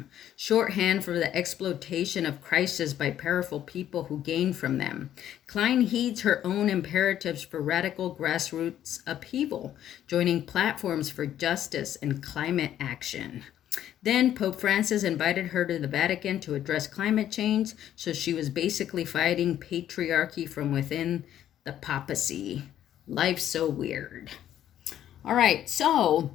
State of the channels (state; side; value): quieter; right; 11.2 dB